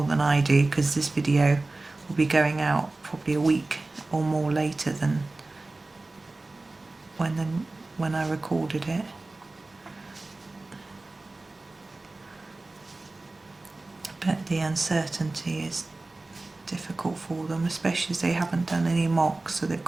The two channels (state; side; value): quieter; left; 3.1 dB